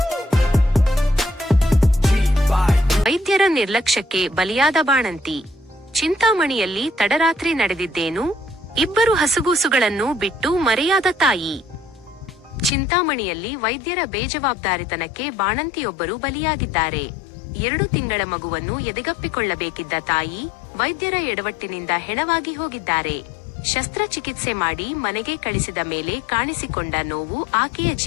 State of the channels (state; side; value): drops out; right; at 12.7 s